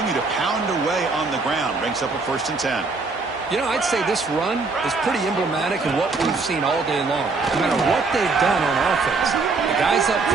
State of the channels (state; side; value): quieter; left; 4.0 dB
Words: to pound away on the ground. Brings up a 1st and 10. You know, I'd say this run is pretty emblematic of what we've seen all day long. No matter what they've done on offense. The guys up